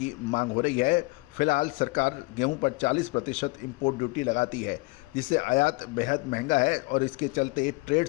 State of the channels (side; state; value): right; quieter; 25.3 dB